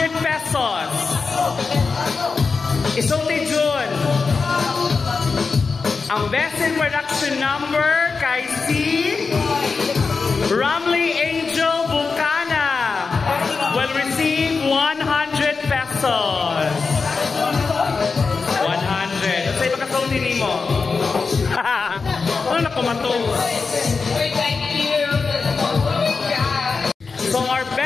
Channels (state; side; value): quieter; right; 4.7 dB